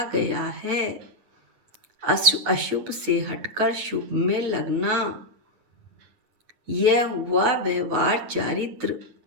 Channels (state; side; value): late; left; 8.8 ms